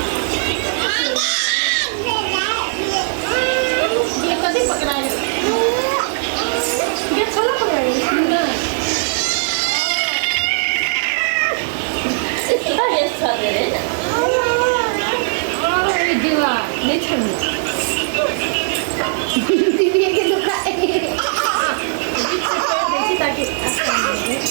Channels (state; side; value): silent; left; digital silence